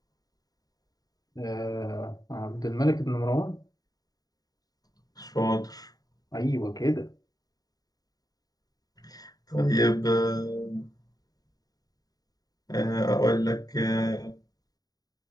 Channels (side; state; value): right; late; 0.18 ms